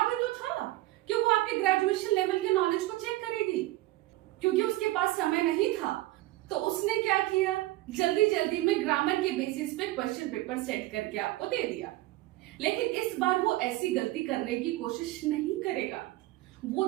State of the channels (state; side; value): quieter; left; 17.9 dB